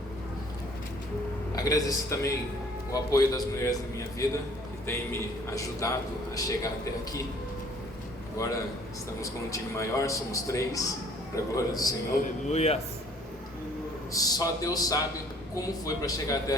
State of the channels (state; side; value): normal; both; correlation 0.56